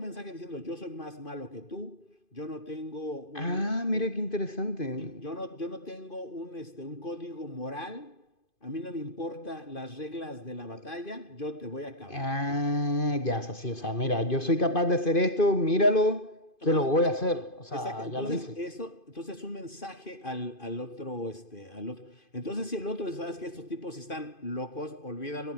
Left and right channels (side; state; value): right; late; 2.5 ms